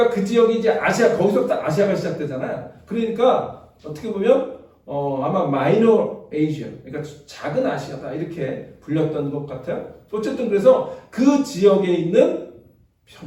그 지역이 이제 아시아, 거기서부터 아시아가 시작되잖아요. 그러니까 어떻게 보면 아마 마이너 에이시아, 그러니까 작은 아시아다 이렇게 불렸던 것 같아요. 어쨌든 그래서 그 지역에 있는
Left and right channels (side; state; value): both; identical; correlation 1.00